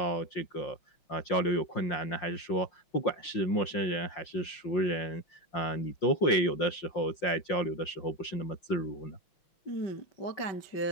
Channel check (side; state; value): right; late; 5.7 ms